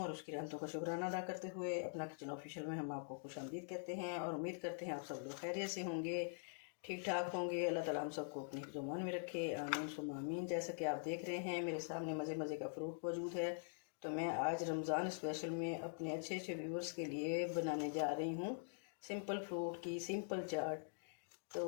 और उसकी रहमतों का शुक्राना अदा करते हुए अपना किचन ऑफिशियल में हम आपको खुशामदीद कहते हैं और उम्मीद करते हैं आप सब लोग खैरियत से होंगे, ठीक ठाक होंगे। अल्लाह ताला हम सबको अपनी ज़ुबान में रखे, आमीन सुम्मा आमीन। जैसा कि आप देख रहे हैं मेरे सामने मज़े मज़े का फ्रूट मौजूद है, तो मैं आज रमज़ान स्पेशल में अपने अच्छे अच्छे व्यूअर्स के लिए बनाने जा रही हूँ सिंपल फ्रूट की सिंपल चाट। तो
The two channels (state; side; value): silent; right; digital silence